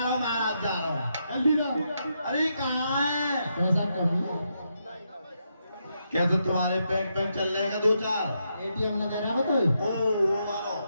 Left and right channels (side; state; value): both; inverted; correlation -0.81